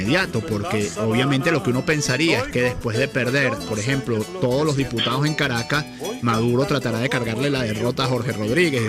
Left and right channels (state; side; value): identical; both; correlation 1.00